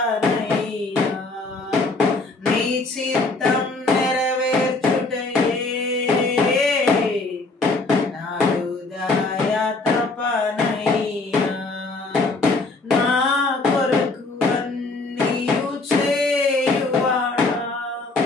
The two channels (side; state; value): right; quieter; 3.4 dB